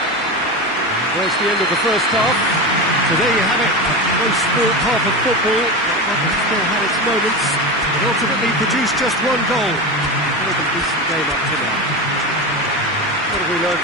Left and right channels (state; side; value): noise; left; hum, 28 dB below the sound